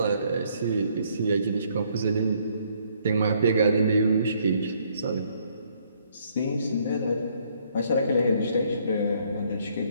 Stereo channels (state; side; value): inverted; both; correlation -0.67